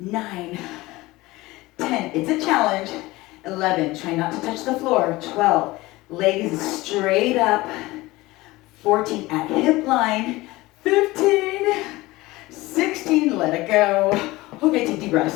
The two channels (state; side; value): quieter; right; 19.9 dB